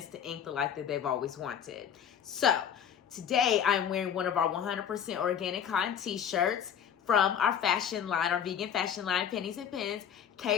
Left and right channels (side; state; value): right; quieter; 8.6 dB